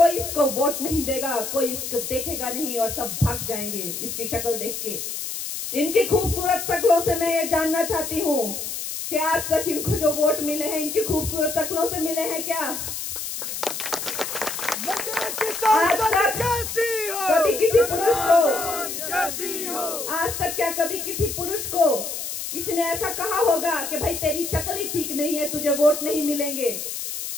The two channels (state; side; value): noise; left; hiss, 5 dB below the sound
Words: इसको वोट नहीं देगा, कोई इसको देखेगा नहीं और सब भाग जाएंगे इसकी शक्ल देख के। इनकी खूबसूरत शक्लों से मैं ये जानना चाहती हूँ कि आज तक इनको जो वोट मिले हैं इनकी खूबसूरत शक्लों से मिले हैं क्या? आज तक कभी किसी पुरुष को आज तक क्या कभी किसी पुरुष को किसी ने ऐसा कहा होगा कि भाई तेरी शक्ल ही ठीक नहीं है, तुझे वोट नहीं मिलेंगे?